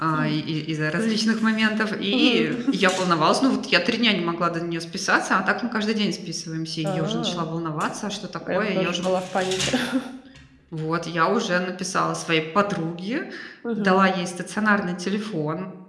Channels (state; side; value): identical; both; correlation 1.00